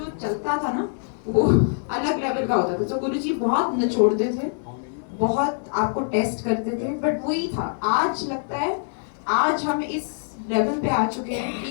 चलता था ना वो अलग लेवल का होता था। तो गुरुजी बहुत निचोड़ते थे, बहुत आपको टेस्ट करते थे, बट वही था। आज लगता है आज हम इस लेवल पे आ चुके हैं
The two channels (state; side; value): silent; right; digital silence